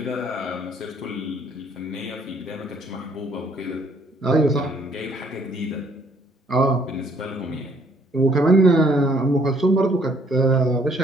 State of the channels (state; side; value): normal; both; correlation 0.64